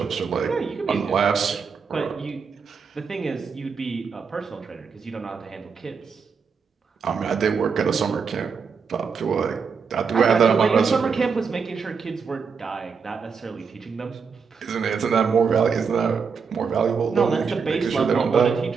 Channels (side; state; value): left; quieter; 5.7 dB